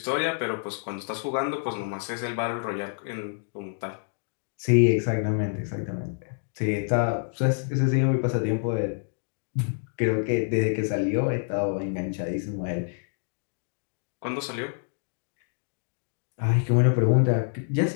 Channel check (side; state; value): right; silent; digital silence